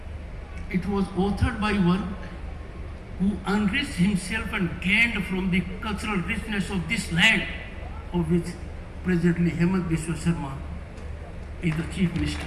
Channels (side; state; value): both; identical; correlation 1.00